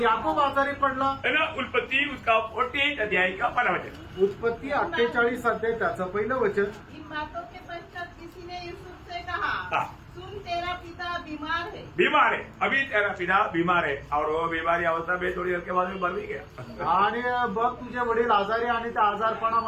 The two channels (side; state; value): both; identical; correlation 1.00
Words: याकोब आजारी पडला. है ना। उत्पत्ति उसका 48 अध्याय का 12 वचन। उत्पत्ती 48 अध्याय त्याचं पहिलं वचन. इन बातों के पश्चात किसी ने यूसुफ से कहा, हाँ। सुन तेरा पिता बीमार है. बीमार है, अभी तेरा पिता बीमार है और वो बीमारी अवस्था में थोड़ी देर के बाद में मर भी गया। आणि बघ तुझे वडील आजारी आणि त्या